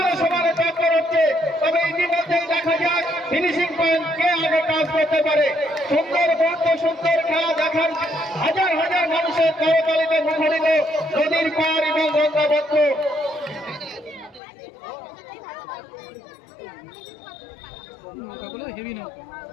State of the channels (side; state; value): right; drops out; at 14.4 s